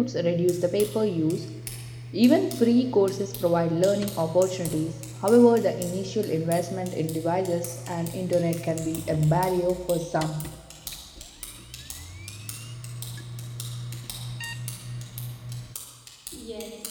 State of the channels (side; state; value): both; identical; correlation 1.00